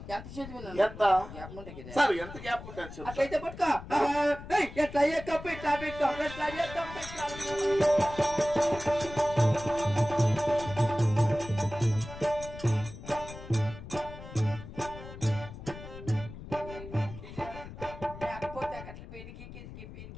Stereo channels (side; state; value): left; noise; rumble, 13 dB below the sound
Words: ఎంత చదివినా ఎంత సార్ ఎంత గ్యాప్ ఉంటుంది చెప్పు. అట్లయితే పట్టుకో. ఎట్లా ఎక్కప్పు ఇట్లా బిక్కం ఎట్లా ఎక్కం లేకపోతే అట్లా పెరిగి